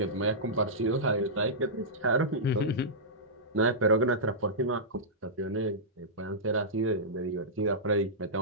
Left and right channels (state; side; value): normal; both; correlation -0.15